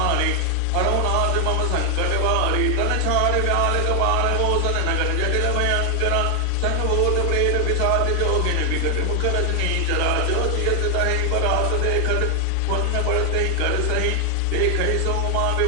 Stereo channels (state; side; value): different; both; correlation 0.00